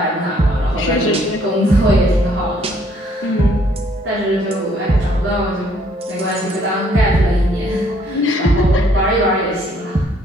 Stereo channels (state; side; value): normal; both; correlation 0.64